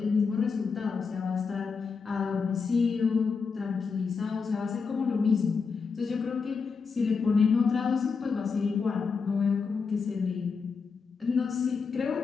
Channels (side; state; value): right; quieter; 5.2 dB